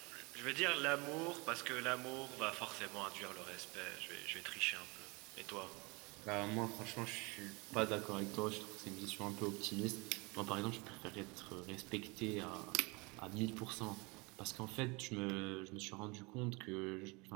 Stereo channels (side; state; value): left; quieter; 27.4 dB